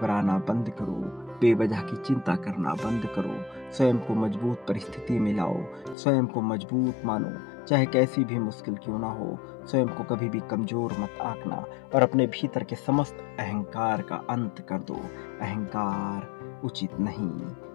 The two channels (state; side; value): drops out; right; at 6.0 s